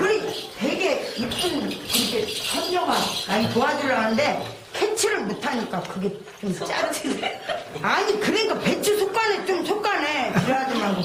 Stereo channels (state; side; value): identical; both; correlation 1.00